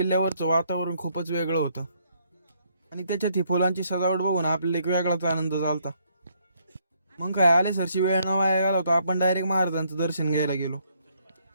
वातावरण खूपच वेगळं होतं. आणि त्याच्यात ही फुलांची सजावट बघून आपल्याला एक वेगळाच आनंद झालता. मग काय आले सरशी वेळ न वाया गेला होता. आपण डायरेक्ट महाराजांचं दर्शन घ्यायला गेलो.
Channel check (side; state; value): both; inverted; correlation -0.70